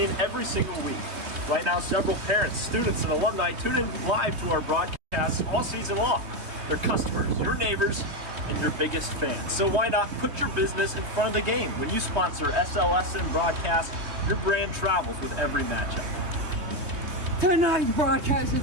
every single week. Right now, several parents, students, and alumni tune in live to our broadcasts all season long. They're customers, your neighbors, and your biggest fans. So why not put your business in front of the game? When you sponsor SLSN broadcast, your brand travels with every matchup. Tonight's broadcast is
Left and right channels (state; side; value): late; left; 3.2 ms